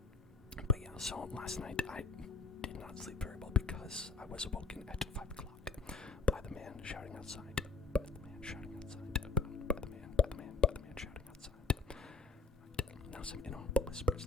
But yeah, so last night I did not sleep very well because I was awoken at 5 o'clock by the man shouting outside. By the man shouting outside. By the man shouting outside. Right. Now some inaudible whispers.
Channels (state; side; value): quieter; right; 4.4 dB